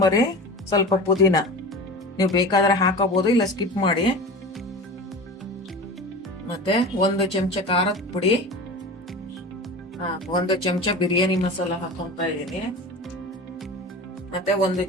ಸ್ವಲ್ಪ ಪುದೀನ. ನೀವು ಬೇಕಾದ್ರೆ ಹಾಕೋಬಹುದು, ಇಲ್ಲ ಸ್ಕಿಪ್ ಮಾಡಿ. ಮತ್ತೆ 1 ಚಮಚ ಖಾರದ ಪುಡಿ, 1 ಚಮಚ ಬಿರಿಯಾನಿ ಮಸಾಲ ಹಾಕೊಂತ ಇದ್ದೀನಿ. ಮತ್ತೆ 1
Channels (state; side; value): normal; both; correlation 0.32